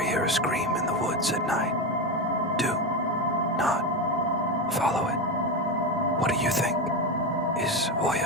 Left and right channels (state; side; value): normal; both; correlation 0.14